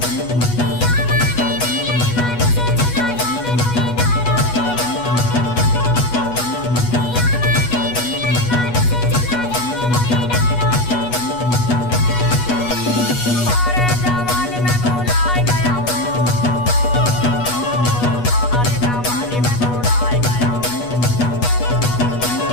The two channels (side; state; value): right; late; 8.2 ms